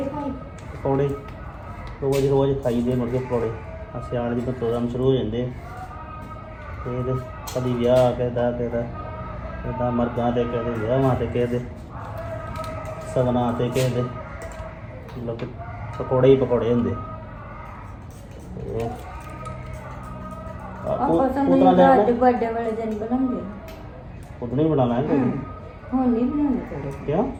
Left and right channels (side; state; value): both; identical; correlation 1.00